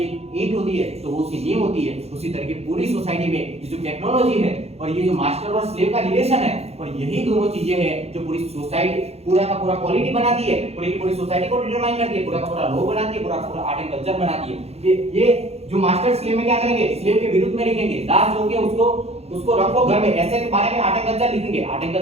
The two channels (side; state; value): left; late; 0.30 ms